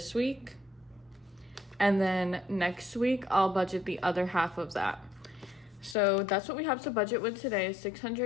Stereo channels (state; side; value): drops out; right; at 6.0 s